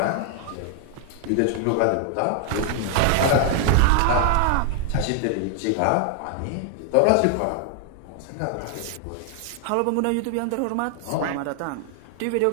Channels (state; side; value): different; both; correlation 0.00